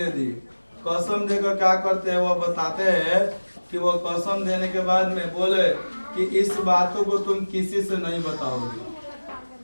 दी। कसम देकर क्या करते हैं, वो बताते हैं कि वो कसम देने के बाद में बोले कि इस बातों को तुम किसी से नहीं बताओगे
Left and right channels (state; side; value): inverted; both; correlation -1.00